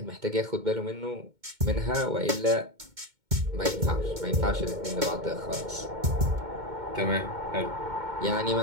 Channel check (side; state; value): left; late; 2.2 ms